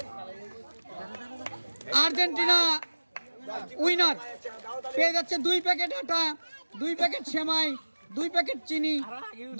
Argentina winner পেয়ে যাচ্ছে 2 প্যাকেট আটা, 2 প্যাকেট সেমাই, 2 প্যাকেট চিনি,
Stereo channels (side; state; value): both; inverted; correlation -1.00